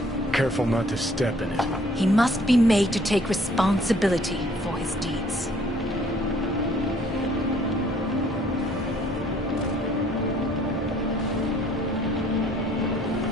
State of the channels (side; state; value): both; normal; correlation 0.60